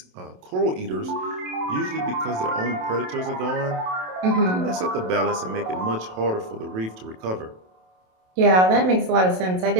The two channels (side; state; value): left; late; 27 ms